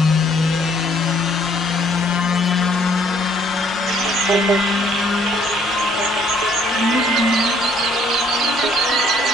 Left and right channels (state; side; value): normal; both; correlation 0.63